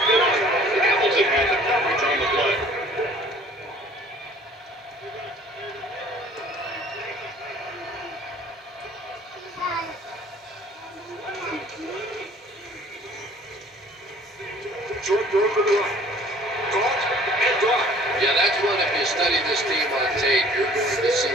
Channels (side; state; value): both; normal; correlation 0.52